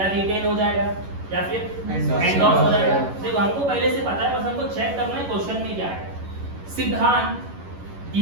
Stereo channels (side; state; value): left; late; 11 ms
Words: रिटेन हो जाएगा, या फिर एंडोर्स हो जाएगा। देखो हमको पहले से पता है, बस हमको चेक करना है क्वेश्चन में क्या है। सिद्धांत